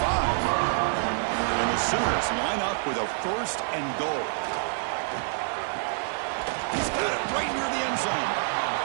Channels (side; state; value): left; silent; digital silence